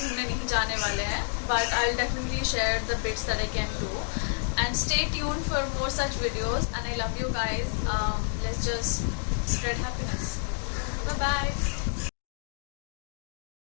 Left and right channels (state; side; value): silent; right; 59 dB below the other